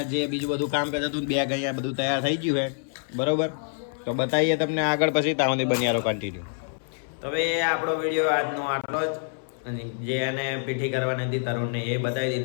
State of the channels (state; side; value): silent; right; 61 dB below the other